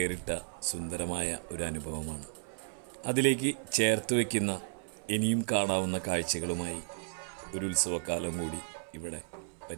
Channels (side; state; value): left; silent; 55 dB below the other